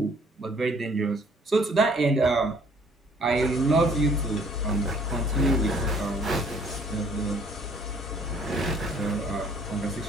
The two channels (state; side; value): normal; both; correlation 0.58